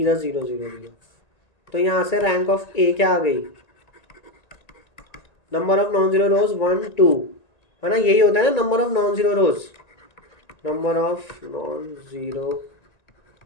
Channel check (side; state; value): right; late; 1.9 ms